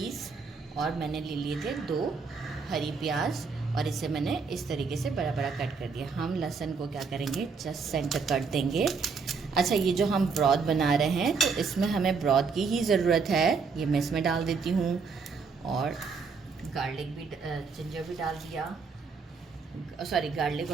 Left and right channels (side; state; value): left; quieter; 5.1 dB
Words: और मैंने ले लिए थे 2 हरी प्याज और इसे मैंने इस तरीके से बड़ा बड़ा कट कर दिया। हम लहसुन को क्या करेंगे, जस्ट सेंटर कट देंगे। अच्छा, ये जो हम ब्रॉथ बना रहे हैं तो इसमें हमें ब्रॉथ की ही ज़रूरत है। ये मैं इसमें डाल देती हूँ और गार्लिक भी, जिंजर भी डाल दिया, सॉरी गार्लिक